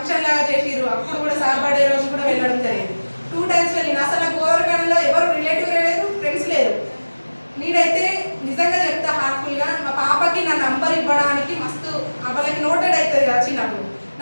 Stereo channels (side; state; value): both; inverted; correlation -1.00